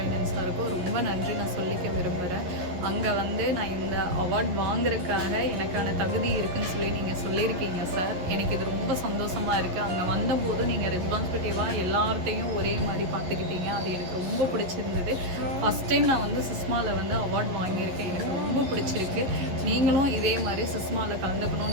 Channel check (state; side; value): late; left; 11 ms